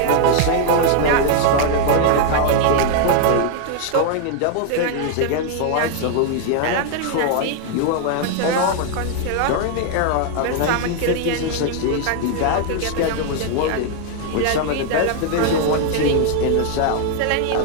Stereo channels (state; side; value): different; both; correlation 0.00